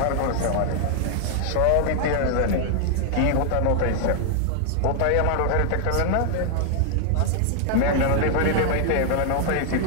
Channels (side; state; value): both; different; correlation 0.00